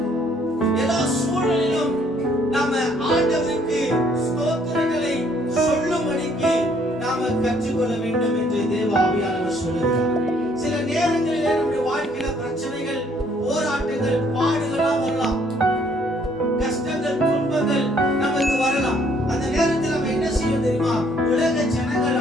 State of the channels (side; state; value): both; normal; correlation 0.65